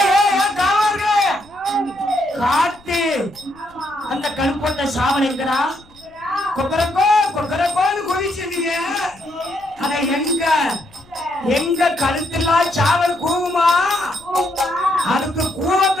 காட்டு அந்த கருப்பட்ட சாவல் எங்கடா கொக்கரக்கோ கொக்கரக்கோன்னு குதிச்சிருந்தீங்க அத எங்க எங்க கழுத்தெல்லாம் சாவல் கூவுமா அதுக்கு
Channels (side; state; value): left; noise; rumble, 28 dB below the sound